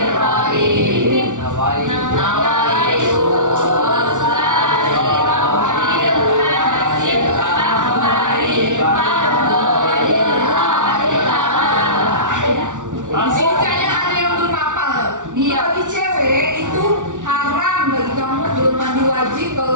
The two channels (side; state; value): left; late; 0.87 ms